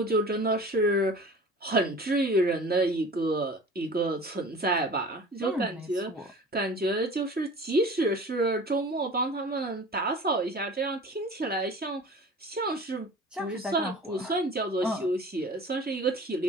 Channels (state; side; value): normal; both; correlation 0.41